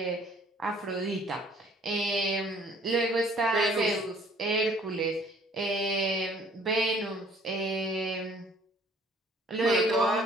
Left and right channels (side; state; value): both; normal; correlation 0.57